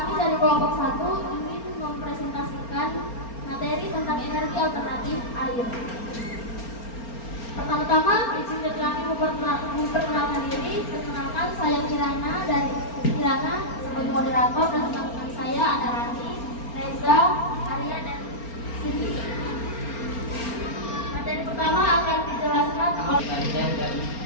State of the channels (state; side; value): late; right; 4.3 ms